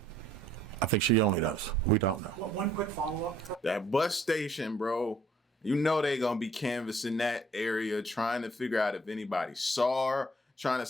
I think she only knows. We don't know. Well, one quick follow-up. That bus station, bro. You know they gonna be canvassing that area, trying to figure out if anybody saw her, trying to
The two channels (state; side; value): normal; both; correlation 0.61